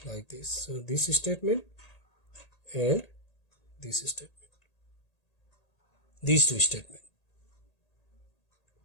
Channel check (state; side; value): late; right; 1.8 ms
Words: like this. So this statement and this statement. These two statements.